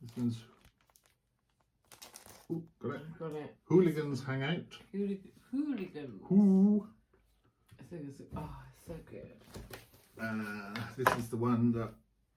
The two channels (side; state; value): both; identical; correlation 1.00